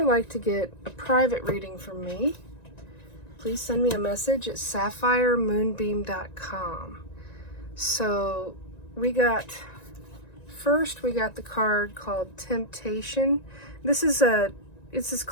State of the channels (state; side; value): late; right; 1.9 ms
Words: like to get a private reading from me, please send me a message at sapphiremoonbeam.com. So we got the card called Temptation. This is